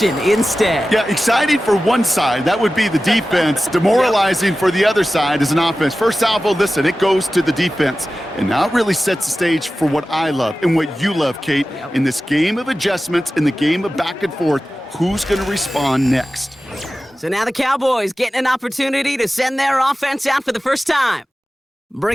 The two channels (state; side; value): normal; both; correlation 0.95